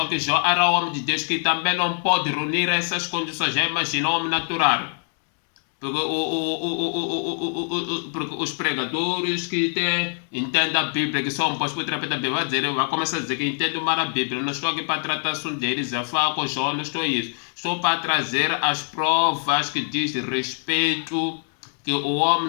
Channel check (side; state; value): right; silent; 55 dB below the other